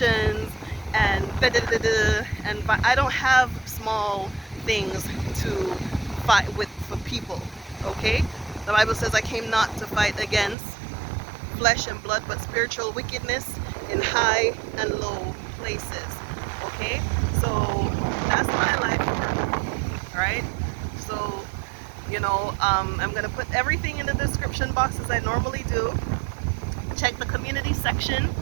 and da da da da. And but I don't have small things to fight with for people. Okay? The Bible says I came not to fight against flesh and blood, but spiritual wickedness in high and low places. Okay? So that's my life here. Alright? So, you know, I'm gonna put everything in the description box as I normally do. Check the community section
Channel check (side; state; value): left; drops out; at 10.6 s